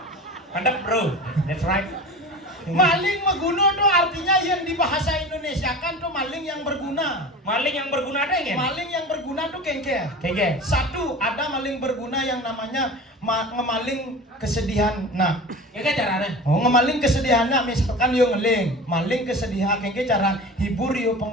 Mantap bro, that's right. Maling meguna tuh artinya yang di bahasa Indonesia kan tuh maling yang berguna. Maling yang berguna ada ya? Maling yang berguna tuh kengke. Kayaknya. Satu, ada maling berguna yang namanya ngemaling kesedihan. Nah, Kayaknya caranya. oh ngemaling kesedihan nah, misalkan yo ngeling, maling kesedihan kengke cara hibur yo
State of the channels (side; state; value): both; normal; correlation 0.34